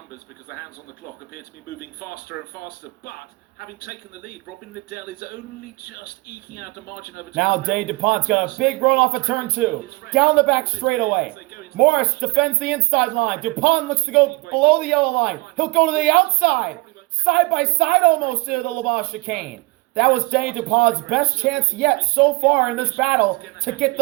because the hands on the clock appear to be moving faster and faster. But having taken the lead, Robin Liddell is only just eking out a margin over. Now Denis Dupont's got a big run off of turn 2. Down the back straightaway. Morris defends the inside line. Dupont looks to go below the yellow line. He'll go to the outside. Side by side almost into the Le Mans chicane. That was Denis Dupont's best chance yet so far in this battle to get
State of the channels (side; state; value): left; quieter; 23.6 dB